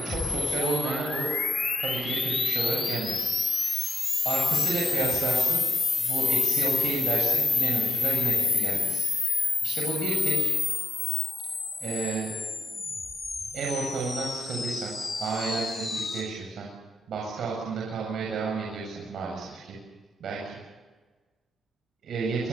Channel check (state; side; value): normal; both; correlation 0.83